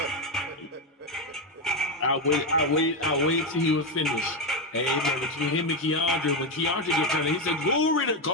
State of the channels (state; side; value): normal; both; correlation 0.09